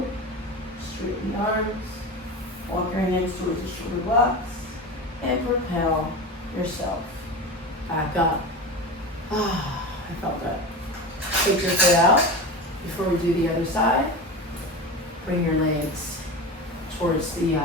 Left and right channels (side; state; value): both; normal; correlation 0.27